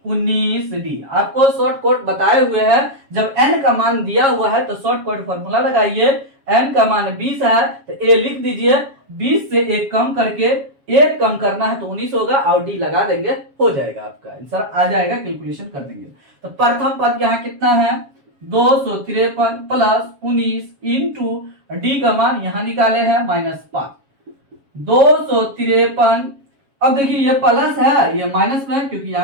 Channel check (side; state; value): left; late; 7.3 ms